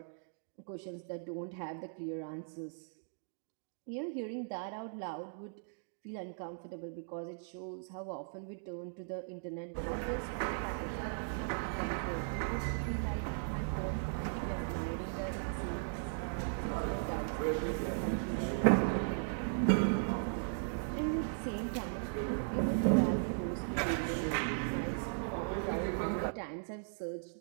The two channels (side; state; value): left; silent; digital silence